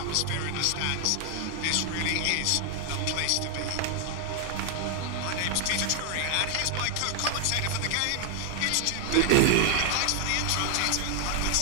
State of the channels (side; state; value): both; different; correlation 0.01